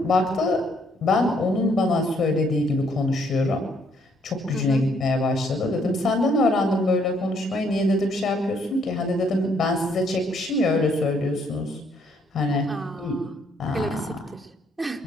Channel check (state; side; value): normal; both; correlation 0.68